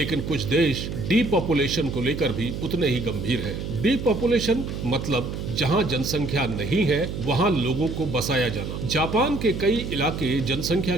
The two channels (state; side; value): noise; right; hum, 6 dB below the sound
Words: कुछ देश डीपॉपुलेशन को लेकर भी उतने ही गंभीर हैं। डीपॉपुलेशन मतलब जहां जनसंख्या नहीं है वहां लोगों को बसाया जाना। जापान के कई इलाके जनसंख्या